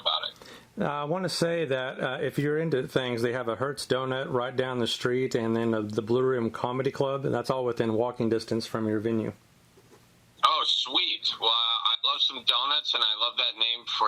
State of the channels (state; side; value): identical; both; correlation 1.00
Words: it. I want to say that if you're into things, they have a Hertz Donut right down the street, and then the Blue Room Comedy Club, and that's all within walking distance from your venue. Oh, sweet. Well, I love some donuts, and I love that name